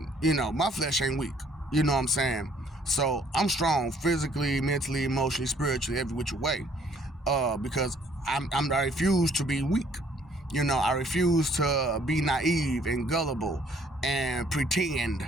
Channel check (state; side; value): normal; both; correlation 0.62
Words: you know, my flesh ain't weak. You know what I'm saying? So I'm strong physically, mentally, emotionally, spiritually, every which way. Because I refuse to be weak. You know, I refuse to be naive and gullible and pretend